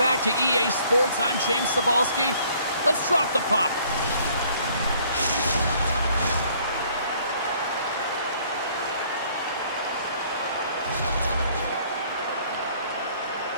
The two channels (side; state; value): both; inverted; correlation -0.60